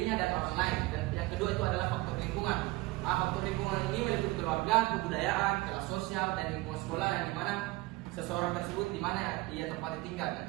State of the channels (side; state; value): left; quieter; 21.1 dB